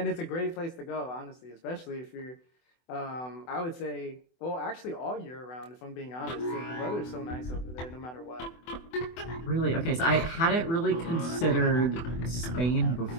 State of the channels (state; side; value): late; right; 24 ms